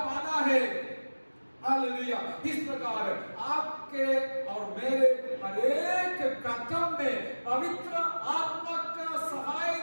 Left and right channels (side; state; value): both; inverted; correlation -1.00